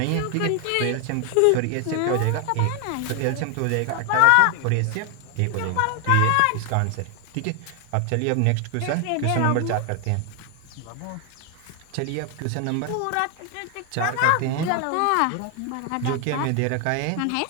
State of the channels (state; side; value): different; both; correlation 0.00